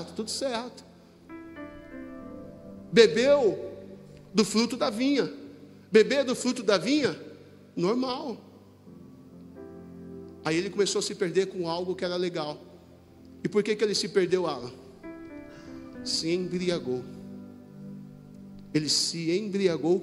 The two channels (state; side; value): identical; both; correlation 1.00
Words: Tudo certo. Bebeu do fruto da vinha. Beber do fruto da vinha, normal. Aí ele começou a se perder com algo que era legal. E por que ele se perdeu, Alan? Se embriagou. Ele se embriagou